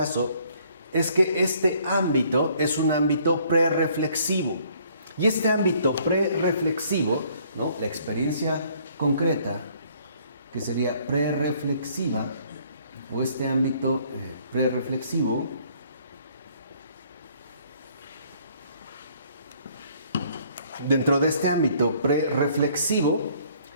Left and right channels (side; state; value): both; inverted; correlation -0.61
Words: es que este ámbito es un ámbito prerreflexivo. Y este ámbito prerreflexivo, ¿no?, la experiencia concreta, que sería prerreflexiva, o este ámbito prerreflexivo, dentro de este ámbito prerreflexivo,